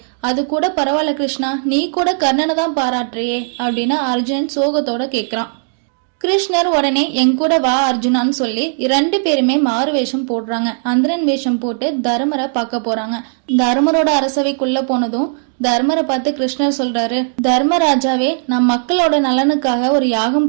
அது கூட பரவாயில்ல கிருஷ்ணா, நீ கூட கர்ணனை தான் பாராட்டுறியே அப்படின்னு அர்ஜுனன் சோகத்தோட கேக்குறான். கிருஷ்ணர் உடனே என் கூட வா அர்ஜுனான்னு சொல்லி 2 பேருமே மாறு வேஷம் போடுறாங்க. அந்தரன் வேஷம் போட்டு தர்மரை பார்க்க போறாங்க. தர்மரோட அரசவைக்குள்ள போனதும் தர்மரை பார்த்து கிருஷ்ணர் சொல்றாரு, தர்மராஜாவே, நான் மக்களோட நலனுக்காக ஒரு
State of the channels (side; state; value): left; silent; digital silence